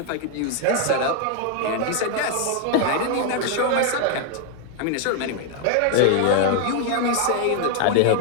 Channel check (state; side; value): different; both; correlation 0.01